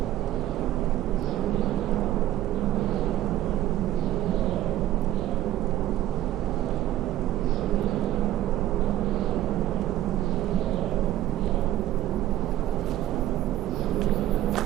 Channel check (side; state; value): left; quieter; 13.6 dB